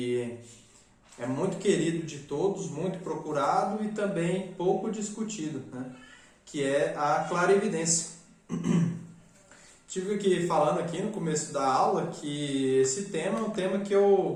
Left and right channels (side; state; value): both; identical; correlation 1.00